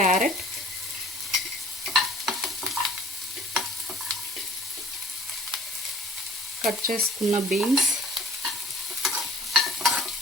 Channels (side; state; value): both; normal; correlation 0.53